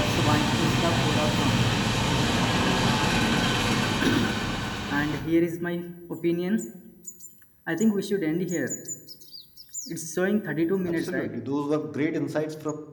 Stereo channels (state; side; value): identical; both; correlation 1.00